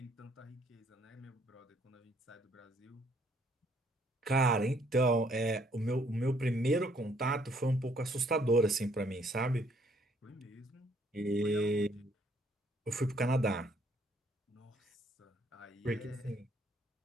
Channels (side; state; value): both; normal; correlation 0.65